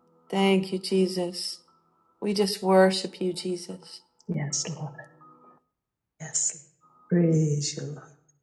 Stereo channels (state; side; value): identical; both; correlation 1.00